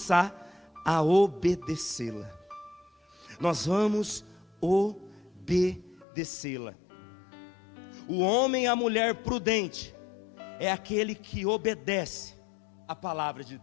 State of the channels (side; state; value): right; drops out; at 6.1 s